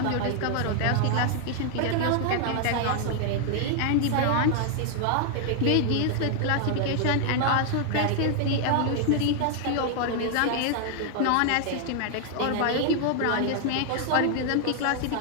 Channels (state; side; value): different; both; correlation 0.00